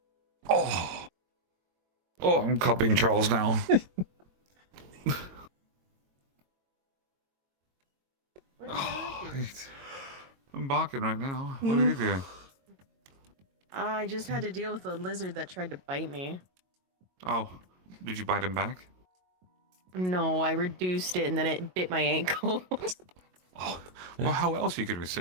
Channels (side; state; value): left; late; 22 ms